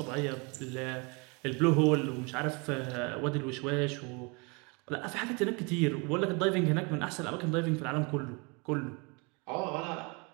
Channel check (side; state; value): left; quieter; 30.3 dB